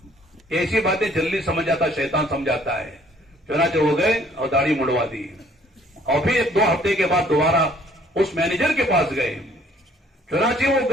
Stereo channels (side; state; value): both; normal; correlation 0.60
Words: ایسی باتیں جلدی سمجھ جاتا شیطان سمجھاتا ہے. چنانچہ ہو گئے اور داڑھی مڑوا دی. اور پھر 2 ہفتے کے بعد دوبارہ اس مینیجر کے پاس گئے. چنانچہ وہ